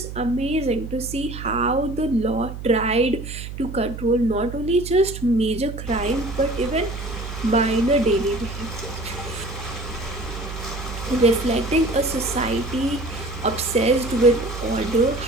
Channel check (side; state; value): right; noise; hum, 9 dB below the sound